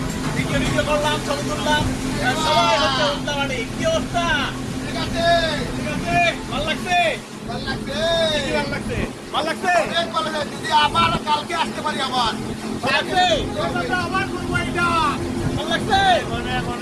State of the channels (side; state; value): both; identical; correlation 1.00